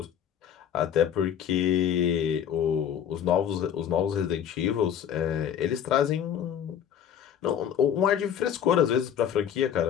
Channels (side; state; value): right; quieter; 9.2 dB